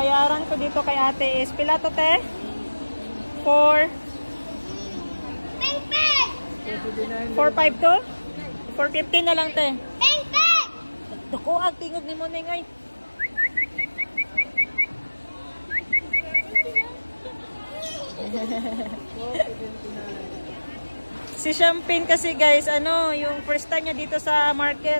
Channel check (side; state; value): both; inverted; correlation -1.00